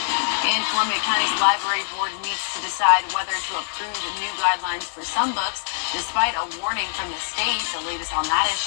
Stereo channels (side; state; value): right; silent; digital silence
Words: And Columbia County's library board meets to decide whether to approve new guidelines for some books, despite a warning from the state. The latest on that